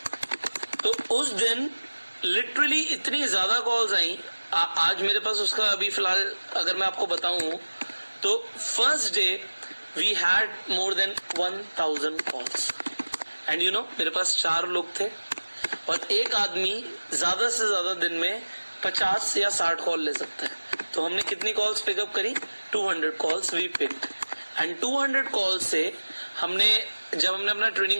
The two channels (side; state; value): both; inverted; correlation -1.00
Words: तो उस दिन लिटरली इतनी ज्यादा कॉल्स आई। आज मेरे पास उसका अभी फिलहाल अगर मैं आपको बताऊं तो first day we had more than 1000 calls and you know मेरे पास 4 लोग थे और एक आदमी ज्यादा से ज्यादा दिन में 50 या 60 कॉल ले सकता है। तो हमने कितनी कॉल्स पिकअप करी? 200 calls we picked and 200 calls से हमने जब हमने अपना